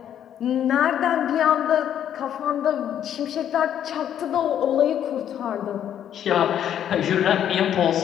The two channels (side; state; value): right; quieter; 10.0 dB